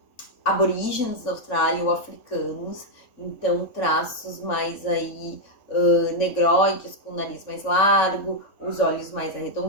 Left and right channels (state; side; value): late; right; 3.5 ms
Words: aborígenes da Austrália ou africanos, então traços mais aí negroides, com o nariz mais largo, os olhos mais